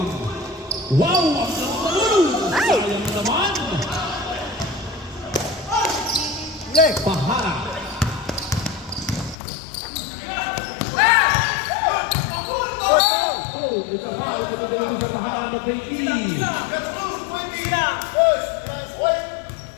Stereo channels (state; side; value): drops out; right; at 9.3 s